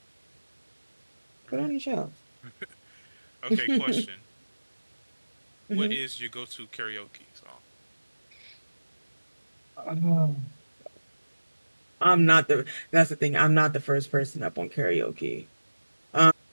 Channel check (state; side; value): inverted; both; correlation -1.00